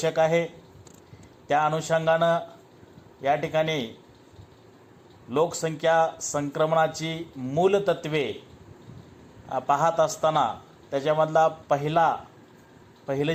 आहे। त्या अनुषंगानं या ठिकाणी लोकसंख्या संक्रमणाची मूलतत्वे पाहत असताना त्याच्यामधला पहिलं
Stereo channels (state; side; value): identical; both; correlation 1.00